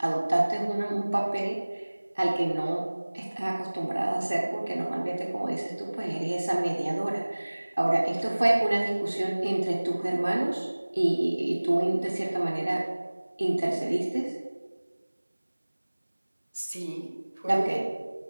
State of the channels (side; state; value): both; inverted; correlation -1.00